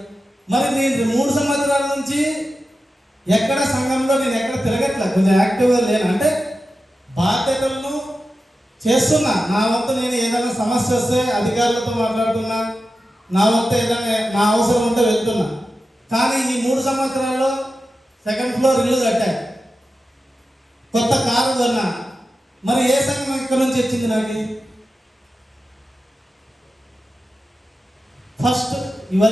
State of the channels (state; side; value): normal; both; correlation 0.92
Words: మరి నేను 3 సంవత్సరాల నుంచి ఎక్కడ సంఘంలో నేను ఎక్కడ తిరగట్లే, కొంచెం యాక్టివ్గా లేను. అంటే బాధ్యతలను చేస్తున్నా, నా వంతు నేను ఏదైనా సమస్య వస్తే అధికారులతో మాట్లాడుతున్నా, నా వంతు ఏదైనా నా అవసరం ఉంటే వెళ్తున్నా. కానీ ఈ 3 సంవత్సరాల్లో 2nd ఫ్లోర్ ఇల్లు కట్టా, కొత్త కారు కొన్నా. మరి ఏ సంఘం ఇక్కడ నుంచి వచ్చింది నాకు? ఫస్ట్